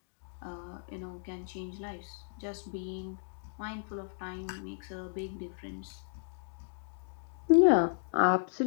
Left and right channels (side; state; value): right; silent; digital silence